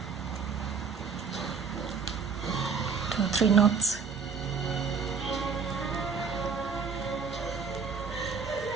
Two, 3 knots.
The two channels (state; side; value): quieter; left; 5.6 dB